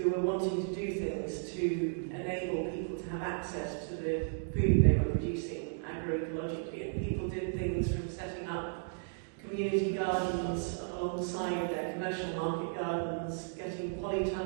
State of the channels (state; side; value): silent; left; digital silence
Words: were wanting to do things to enable people to have access to the food they were producing agroecologically. And people did things from setting up community gardens alongside their commercial market gardens, getting